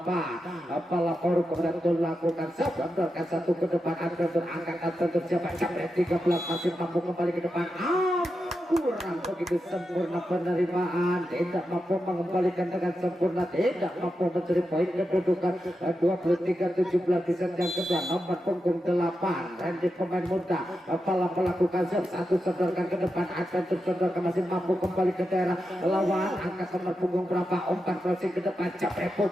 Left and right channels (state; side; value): normal; both; correlation 0.88